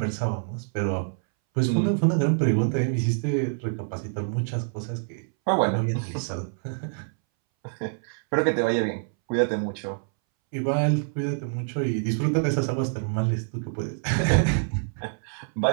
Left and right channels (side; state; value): left; silent; 61 dB below the other